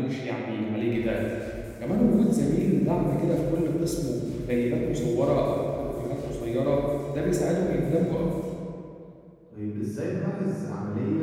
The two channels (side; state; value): both; identical; correlation 1.00